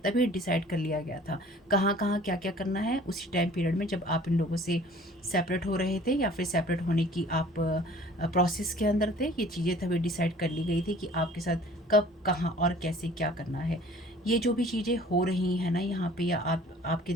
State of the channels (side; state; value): both; normal; correlation 0.50